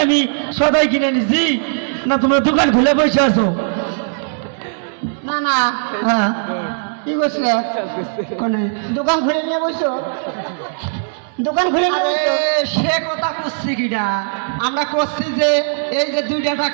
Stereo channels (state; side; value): silent; left; digital silence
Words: আমি সদাই কিনে নিছি না তোমার দোকান খুলে বসে আছো? না না, হ্যাঁ, কি করছিলে? কোনে দোকান খুলে নিয়ে বসছো? দোকান খুলে নিয়ে আরে সে কথা করছি কিনা? আমরা করছি যে এই যে 2